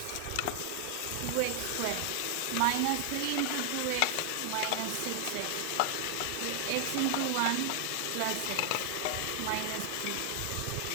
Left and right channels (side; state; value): both; different; correlation 0.00